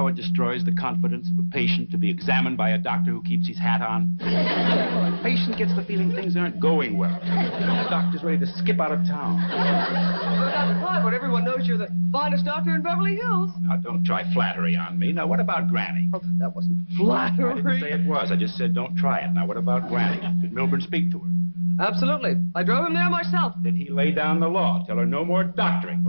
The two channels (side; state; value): both; inverted; correlation -1.00